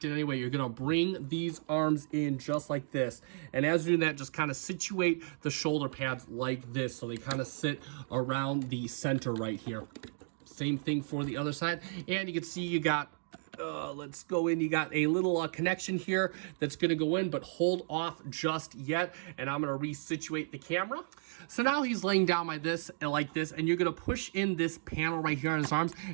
in any way. You're going to bring these arms in just like this. And as you're doing that, just kind of situate the shoulder pads like this so they kind of sit around the center right here. Same thing for the other side. And you can see you got let's go in. You got a little connection here that's going to go in, but hold off just yet. And I'm going to resituate the camera. So now he's laying down like this, and you're going to push in this panel right here on his arms,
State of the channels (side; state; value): left; silent; digital silence